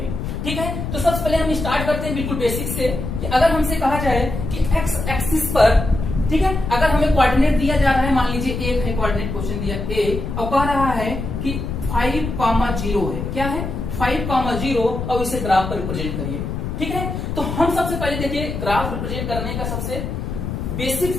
ठीक है, तो सबसे पहले हम स्टार्ट करते हैं बिल्कुल बेसिक से कि अगर हमसे कहा जाए कि एक्स एक्सिस पर, ठीक है, अगर हमें कोऑर्डिनेट दिया जा रहा है, मान लीजिए एक है कोऑर्डिनेट क्वेश्चन दिया ए, और कह रहा है कि 5,0 है, क्या है, 5,0, और इसे ग्राफ पर रिप्रेजेंट करिए। ठीक है, तो हम सबसे पहले देखिए ग्राफ रिप्रेजेंट करने का सबसे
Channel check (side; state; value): left; noise; rumble, 4 dB below the sound